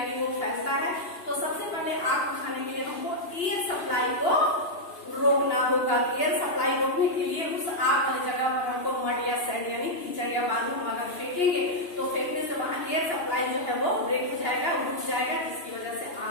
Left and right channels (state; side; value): late; right; 2.9 ms